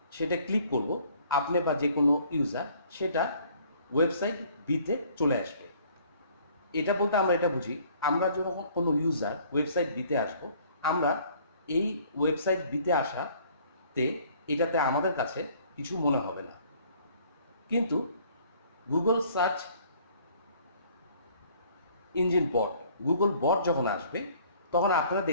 সেটা ক্লিক করব, আপনি বা যে কোনো ইউজার সেটা ওয়েবসাইট বিতে চলে আসবে। এটা বলতে আমরা এটা বুঝি, আমরা যখন কোনো ইউজার ওয়েবসাইট বিতে আসবো, আমরা এই ওয়েবসাইট বিতে আসাতে এটাতে আমাদের কাছে কিছু মনে হবে না, কিন্তু গুগল সার্চ ইঞ্জিন বট, গুগল বট যখন আসবে তখন আপনারা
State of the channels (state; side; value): inverted; both; correlation -0.57